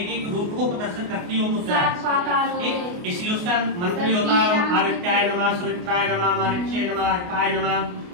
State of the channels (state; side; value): late; left; 28 ms